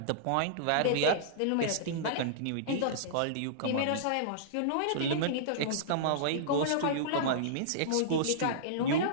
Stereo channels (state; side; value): different; both; correlation -0.03